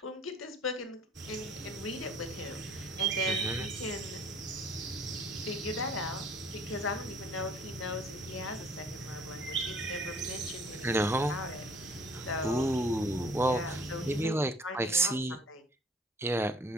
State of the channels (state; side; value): normal; both; correlation 0.54